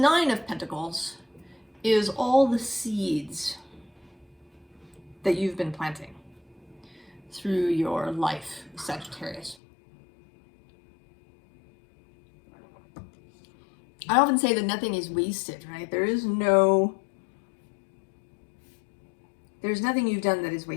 of Pentacles is all the seeds that you've been planting through your life, Sagittarius. I often say that nothing is wasted, right? There's nothing you've done that is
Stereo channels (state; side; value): drops out; right; at 9.6 s